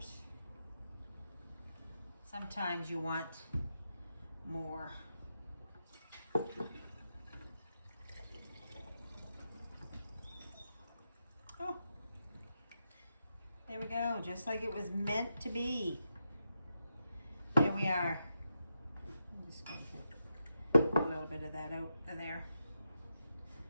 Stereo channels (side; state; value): both; inverted; correlation -0.86